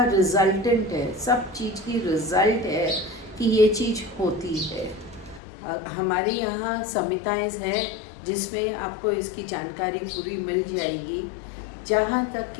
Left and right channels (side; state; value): right; drops out; at 5.4 s